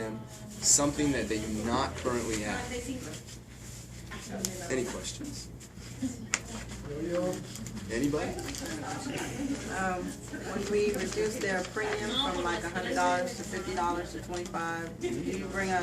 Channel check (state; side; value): identical; both; correlation 1.00